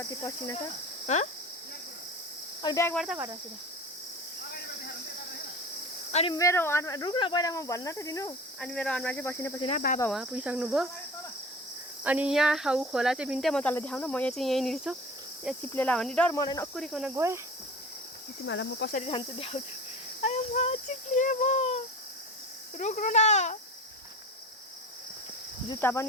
पसिना छ। अनि ब्यागबाट त घर आएको अनि मेरो अनुहार रुक्न पहिला म भन्न त दिनु। अनि मेरो अनुहार चाहिँ पसिना पसिना। बाबा उहाँ पुगिसक्नुभयो। अनि यहाँ ऊ खोला चाहिँ बिन्ते म तँलाई देखाउन। म यहाँ चाहिँ यहीँनिर छु। यहाँ चिप्लेला भन्ने डर मलाई नकुरिकन गएँ। तिमीहरूलाई म कसरी जान्छु देखाउँछु। आयो म चिप्लिएँ म। रुक्नु न। जुत्ता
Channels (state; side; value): normal; both; correlation 0.36